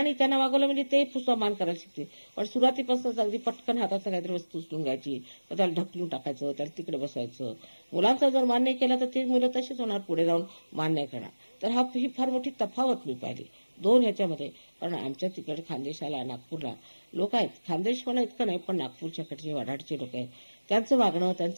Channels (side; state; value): both; inverted; correlation -1.00